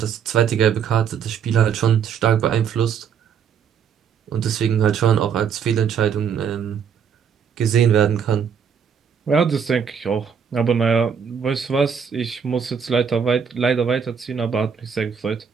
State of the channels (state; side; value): quieter; left; 7.2 dB